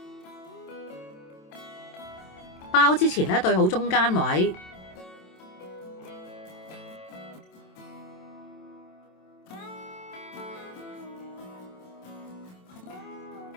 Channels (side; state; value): right; late; 27 ms